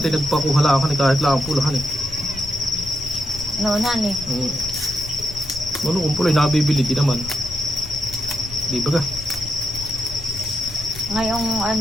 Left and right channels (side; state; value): left; noise; rumble, 13 dB below the sound